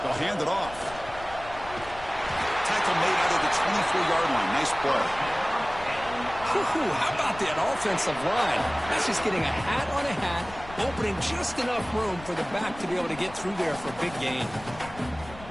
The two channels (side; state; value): left; noise; rumble, 16 dB below the sound